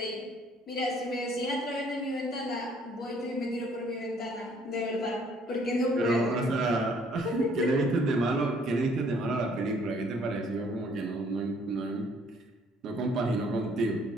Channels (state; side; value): normal; both; correlation 0.62